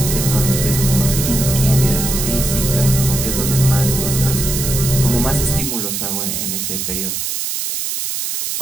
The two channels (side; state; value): right; noise; hiss, 3 dB below the sound